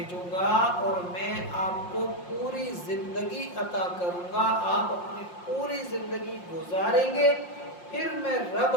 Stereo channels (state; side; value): late; right; 5.6 ms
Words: گا اور میں آپ کو پوری زندگی عطا کروں گا، آپ اپنی پوری زندگی گزاریں گے، پھر میں رب